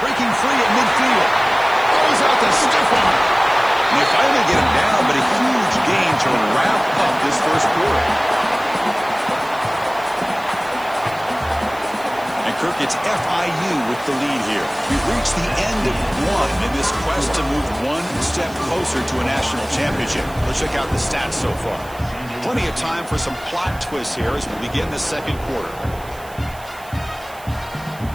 Breaking free at midfield. Throws out the stiff arm. And they finally get him down, but a huge gain to wrap up this first quarter. And Kirk, it's FIU with the lead here. We've reached the end of one in this quest to move one step closer to a national championship. Let's check out the stats so far. Plenty of time for some plot twists here as we begin the second quarter.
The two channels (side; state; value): right; noise; hiss, 21 dB below the sound